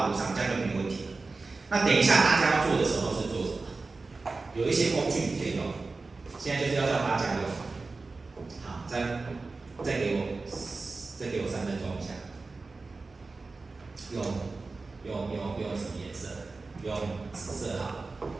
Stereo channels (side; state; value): left; quieter; 3.8 dB